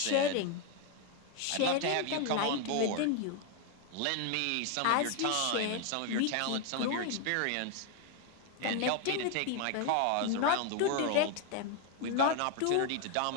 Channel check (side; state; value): both; different; correlation 0.01